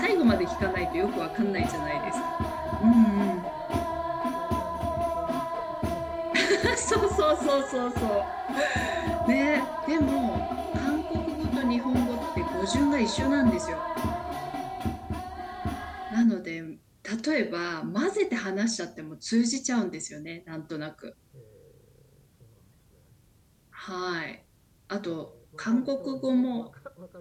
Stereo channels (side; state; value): both; identical; correlation 1.00